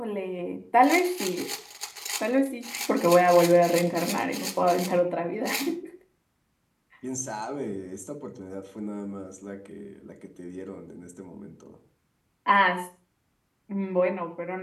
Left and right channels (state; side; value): identical; both; correlation 1.00